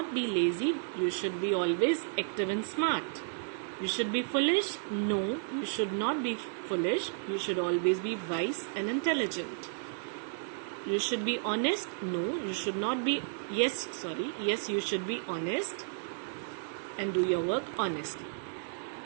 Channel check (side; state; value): left; silent; 56 dB below the other